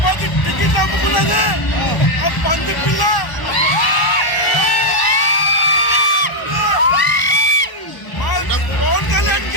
టికెట్ అమ్ముకున్నది ఆ పంది పిల్ల. పవన్ కళ్యాణ్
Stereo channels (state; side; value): late; right; 1.0 ms